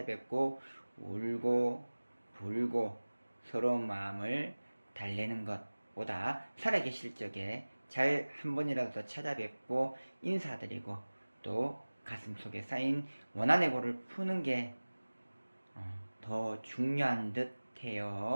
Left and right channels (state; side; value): inverted; both; correlation -1.00